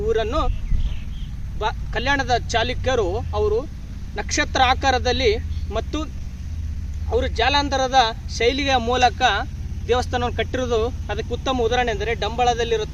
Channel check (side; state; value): both; identical; correlation 1.00